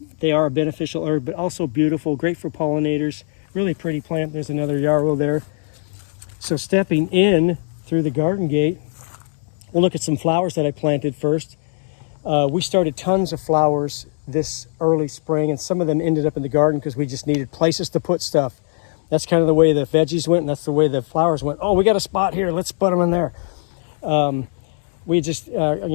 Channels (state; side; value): silent; right; digital silence